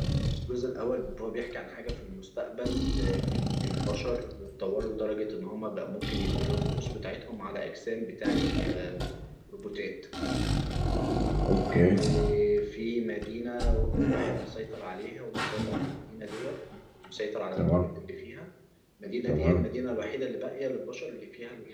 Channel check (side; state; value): both; identical; correlation 1.00